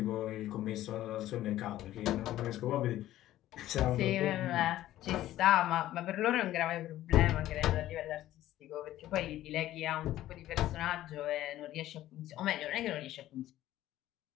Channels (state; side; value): quieter; right; 14.1 dB